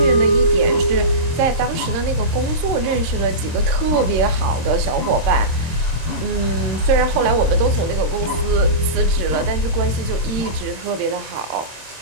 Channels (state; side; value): late; left; 26 ms